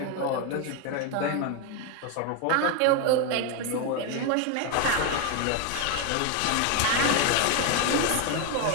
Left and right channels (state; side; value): different; both; correlation 0.01